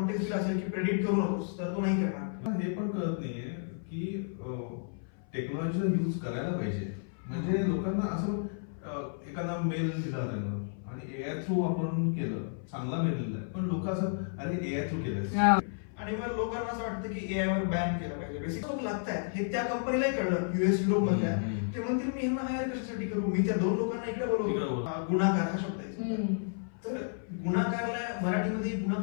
दिला असेल की प्रेडिक्ट करू नकोस तर तो नाही करणार. हे पण कळत नाहीये की टेक्नॉलॉजीला यूज करायला पाहिजे. म्हणजे लोकांना असं एखादा मेल दिला त्यानं आणि एआय थ्रू आपण केलं, चांगला मेल दिला, पण लोक असं अरे एआय थ्रू केलं आणि मग लोकांना असं वाटतं की एआय वर बॅन केलं पाहिजे. बेसिक लोक लागतात हे त्या कंपनीलाही कळलं युएस युरोप मधल्या, ते म्हणतील मी यांना हायर कशासाठी करू, मी त्या 2 लोकांना इकडे बोलवतो. गुन्हागार हा शब्द आहे, तर गुन्हागारला मराठीमध्ये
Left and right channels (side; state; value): right; silent; 56 dB below the other